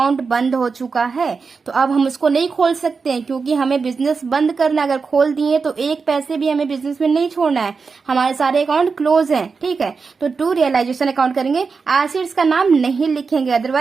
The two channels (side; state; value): left; quieter; 4.9 dB